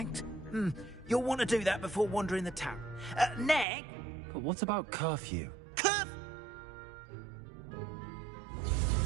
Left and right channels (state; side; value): drops out; left; at 3.7 s